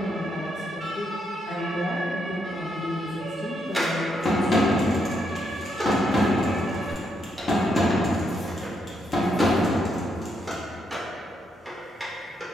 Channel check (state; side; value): normal; both; correlation 0.78